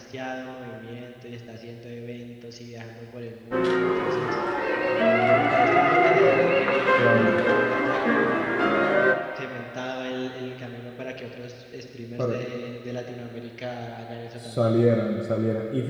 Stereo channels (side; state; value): both; identical; correlation 1.00